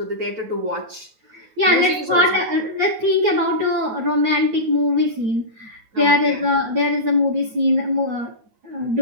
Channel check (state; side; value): late; left; 9.3 ms